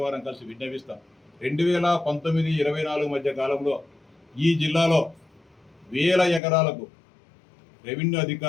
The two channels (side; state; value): right; drops out; at 6.4 s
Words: వారం కలిసి విజ్ఞపిస్తాం. 2019-24 మధ్య కాలంలో ఈ జిల్లాలో వేల ఎకరాలకు రెవెన్యూ